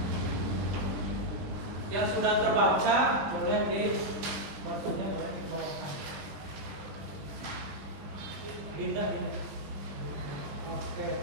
Yang sudah terbaca boleh di barcode-nya boleh dibawakan. Dinda. Oke.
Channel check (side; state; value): left; late; 20 ms